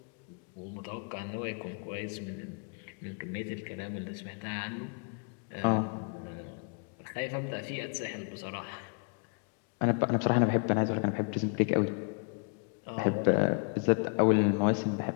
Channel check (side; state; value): right; quieter; 38.8 dB